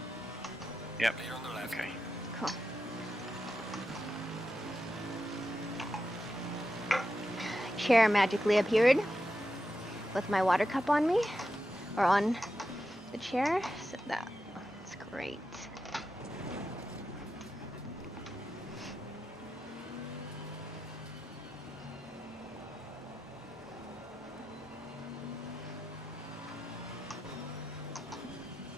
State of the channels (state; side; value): normal; both; correlation 0.89